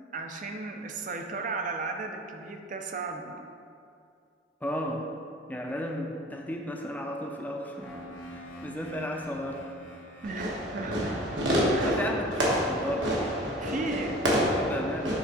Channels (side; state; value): both; normal; correlation 0.42